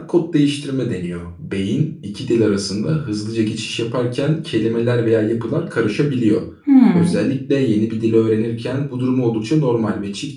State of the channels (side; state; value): both; identical; correlation 1.00